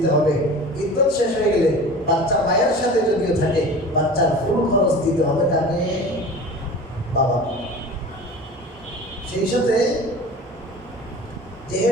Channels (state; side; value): normal; both; correlation 0.37